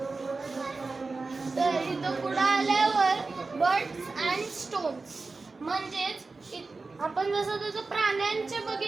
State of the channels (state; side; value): quieter; left; 3.9 dB